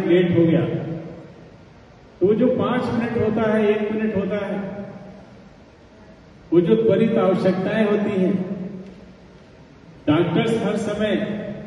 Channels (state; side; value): identical; both; correlation 1.00